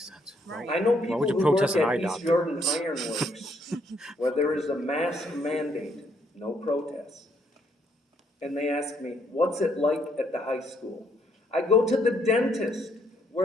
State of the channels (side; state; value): both; normal; correlation 0.71